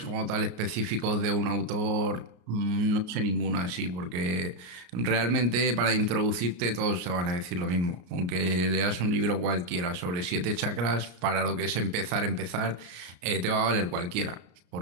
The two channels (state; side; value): late; left; 33 ms